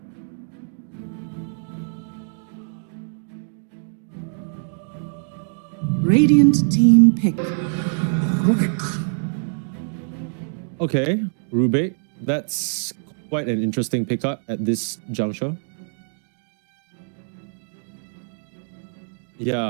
Radiant team pick. Okay, Rubik. That's quite an interesting pickup at this juncture.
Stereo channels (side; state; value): left; silent; 63 dB below the other